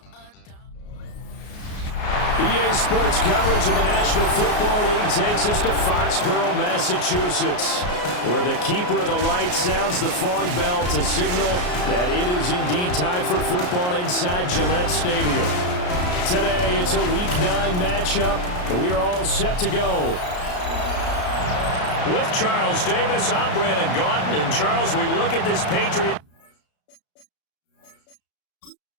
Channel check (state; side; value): late; right; 33 ms